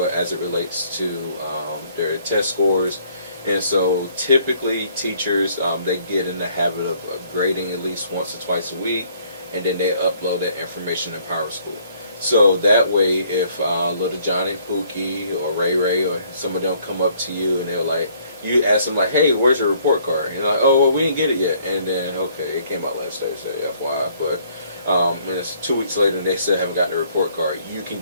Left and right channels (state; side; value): inverted; both; correlation -0.62